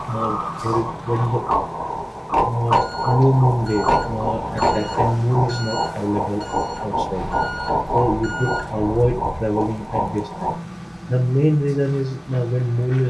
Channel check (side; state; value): both; identical; correlation 1.00